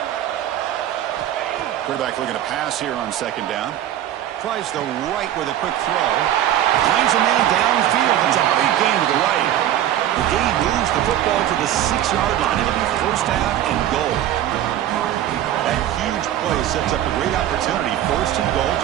Quarterback looking to pass here on second down. Tries the right with a quick throw. Finds a man downfield. That's a big gain to the right. The gain moves the football to the 6-yard line. It'll be first half and goal. That huge play sets up a great opportunity. First and goal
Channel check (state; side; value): quieter; left; 11.9 dB